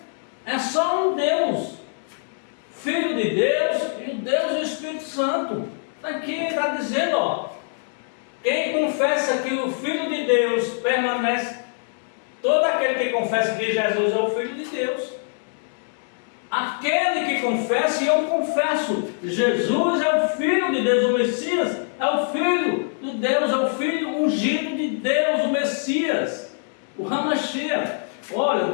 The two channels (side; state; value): right; silent; digital silence